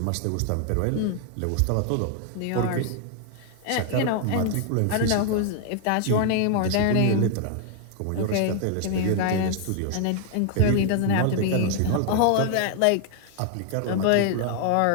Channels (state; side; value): different; both; correlation 0.00